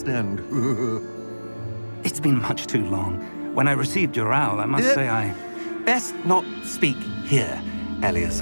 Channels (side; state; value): both; inverted; correlation -1.00